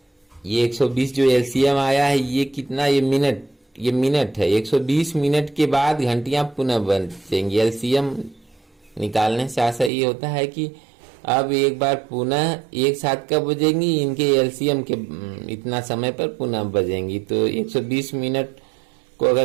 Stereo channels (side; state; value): left; drops out; at 9.9 s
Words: ये 120 जो एलसीएम आया है ये कितना? ये मिनट है। 120 मिनट के बाद घंटियां पुनः बजेंगी। एलसीएम निकालने से आशा ये होता है कि अब एक बार पुनः एक साथ कब बजेंगी, इनके एलसीएम के इतना समय पर पुनः बजेंगी। तो 120 मिनट को